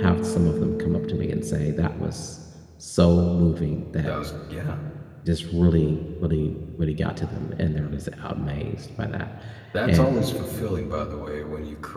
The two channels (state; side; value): identical; both; correlation 1.00